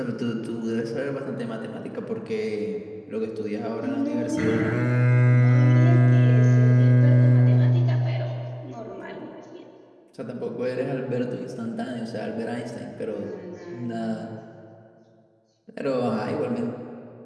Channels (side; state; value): both; identical; correlation 1.00